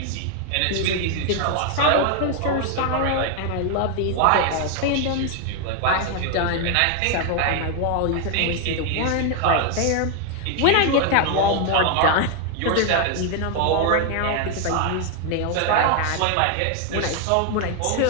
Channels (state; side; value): different; both; correlation 0.00